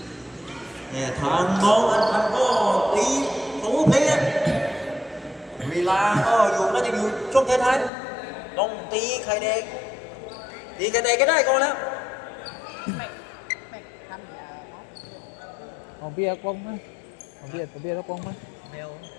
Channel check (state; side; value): drops out; right; at 7.9 s